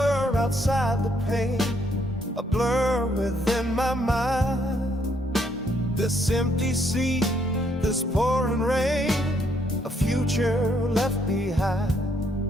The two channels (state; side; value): normal; both; correlation 0.71